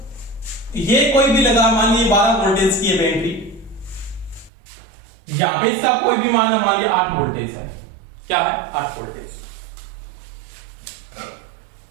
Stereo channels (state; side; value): drops out; left; at 4.5 s